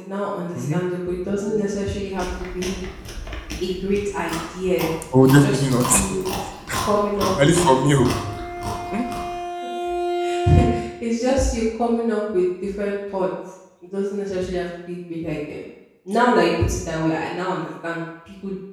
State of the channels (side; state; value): both; identical; correlation 1.00